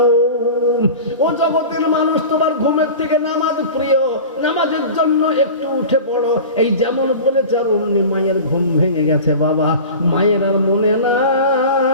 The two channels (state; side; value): inverted; both; correlation -0.34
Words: ও জগতের মানুষ, তোমার ঘুমের থেকে নামাজ প্রিয়, নামাজের জন্য একটু উঠে পড়ো। এই যেমন বলেছে, আর অমনি মায়ের ঘুম ভেঙে গেছে বাবা। মায়ের আর মনে